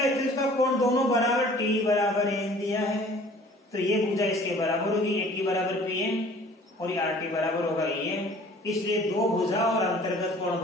का कोण दोनों बराबर T बराबर N दिया है, तो ये भुजा इसके बराबर होगी, AT बराबर PN और ये RT बराबर होगा EN, इसलिए दो भुजा और अंतर्गत कोण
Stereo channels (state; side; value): normal; both; correlation 0.50